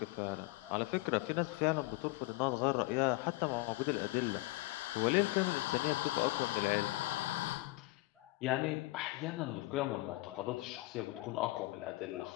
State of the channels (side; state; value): right; quieter; 20.3 dB